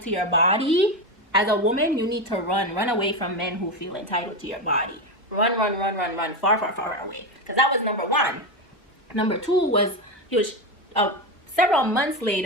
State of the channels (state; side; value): normal; both; correlation 0.14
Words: to your body, as a woman, you need to run away from men who feel entitled to your body. Run, far away. Because that was number one. Number two was, he was, several months